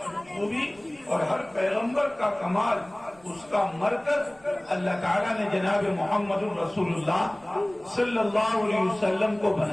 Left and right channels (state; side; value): noise; right; rumble, 28 dB below the sound